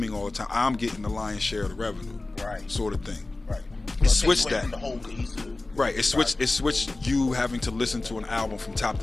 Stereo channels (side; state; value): right; quieter; 3.1 dB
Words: all the time, I'm getting the lion's share of the revenue, sort of thing. It switched that. Right, it switched you having to listen to an album from top